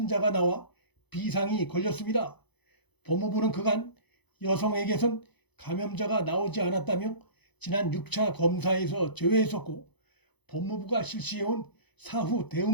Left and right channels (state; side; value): late; right; 0.99 ms